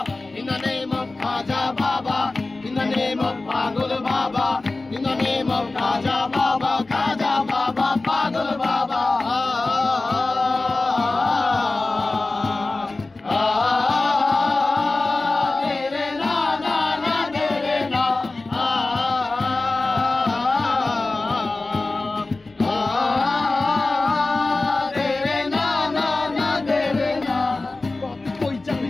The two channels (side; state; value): right; quieter; 3.3 dB